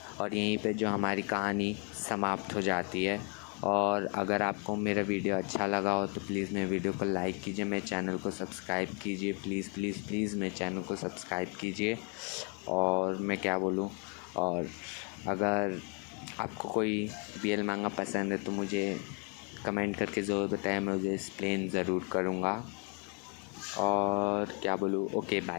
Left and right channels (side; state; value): right; quieter; 36.8 dB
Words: और यहीं पे जो हमारी कहानी समाप्त हो जाती है। और अगर आपको मेरा वीडियो अच्छा लगा हो तो प्लीज़ मेरे वीडियो को लाइक कीजिए, मेरे चैनल को सब्सक्राइब कीजिए, प्लीज़ प्लीज़ प्लीज़ मेरे चैनल को सब्सक्राइब कीजिए। और मैं क्या बोलूँ, और अगर आपको कोई BL मांगा पसंद है तो मुझे कमेंट करके ज़रूर बताएं, मैं मुझे एक्सप्लेन ज़रूर करूँगा। और क्या बोलूँ, okay